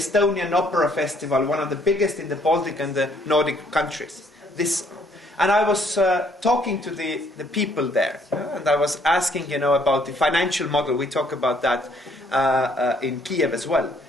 Opera Festival, one of the biggest in the Baltic and the Nordic countries. And I was talking to the people there, and I was asking, about the financial model. We talk about that in Kiev as well.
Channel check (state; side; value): normal; both; correlation 0.65